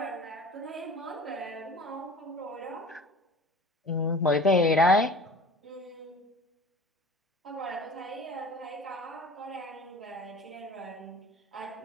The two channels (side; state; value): both; normal; correlation 0.41